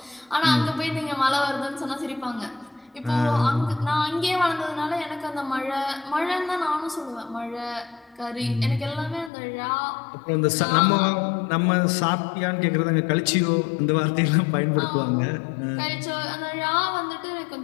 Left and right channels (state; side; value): drops out; right; at 9.3 s